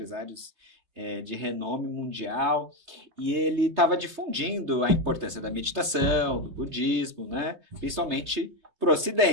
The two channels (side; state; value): left; late; 3.3 ms